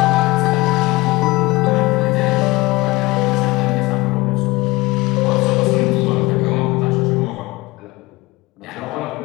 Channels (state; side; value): quieter; right; 21.6 dB